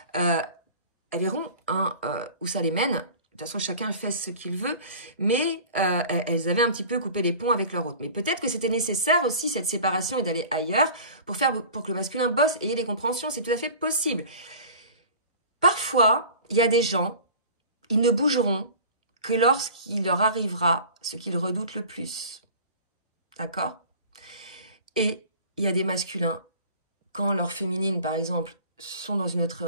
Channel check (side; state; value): both; inverted; correlation -0.41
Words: Elles verront où ça les mène. De toute façon, chacun fait ce qu'il veut, mais elles avaient un petit peu coupé les ponts avec leur autre. Mais peut-être que c'était nécessaire aussi, cette séparation, et d'aller ailleurs pour que le masculin bosse et ait les compréhensions. C'est tout à fait possible. Parfois, il y a des gens, ils ne bougeront que lorsqu'il leur arrivera ce qu'ils redoutent le plus. D'accord? Et il y a des masculins, quand leurs féminines, par exemple, sont dans une